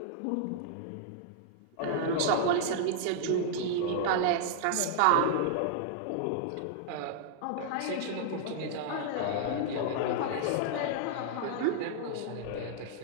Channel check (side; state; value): both; different; correlation -0.01